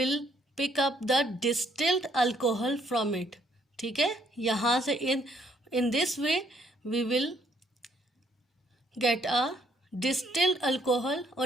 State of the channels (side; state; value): both; normal; correlation 0.68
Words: pick up the distilled alcohol from it. ठीक है, यहाँ से in this way we will get a distilled alcohol, or